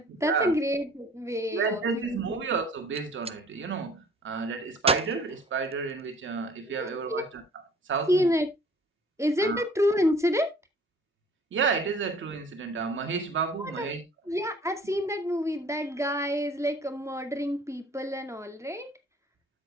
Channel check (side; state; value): both; normal; correlation 0.52